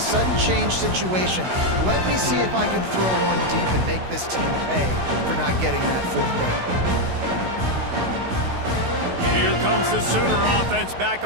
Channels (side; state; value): left; late; 16 ms